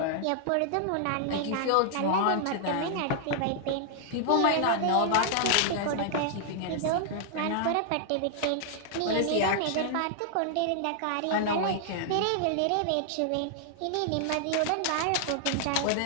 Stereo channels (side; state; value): both; different; correlation -0.01